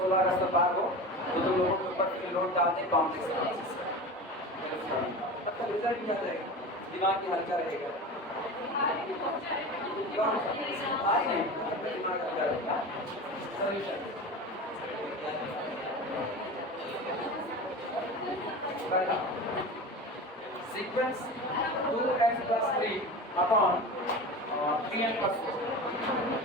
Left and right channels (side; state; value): both; normal; correlation 0.31